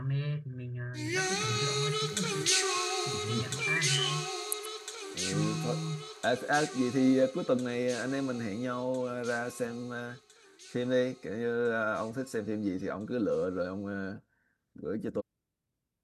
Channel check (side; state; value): both; identical; correlation 1.00